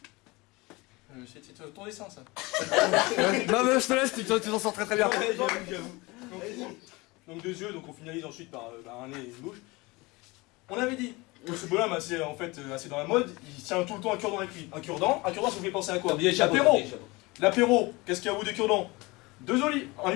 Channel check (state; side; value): quieter; right; 23.5 dB